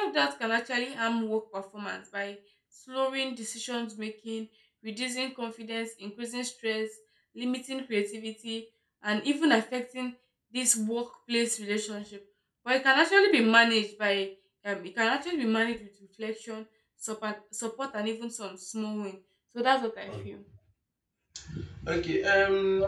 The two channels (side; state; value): both; identical; correlation 1.00